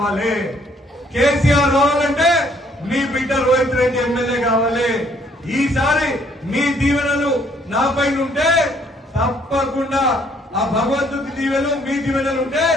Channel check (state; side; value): normal; both; correlation 0.65